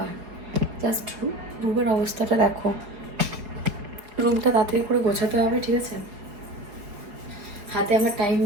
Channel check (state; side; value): late; left; 4.8 ms